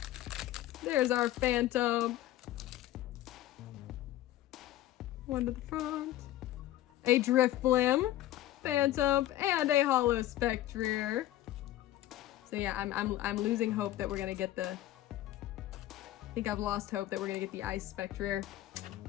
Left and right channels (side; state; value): right; quieter; 14.0 dB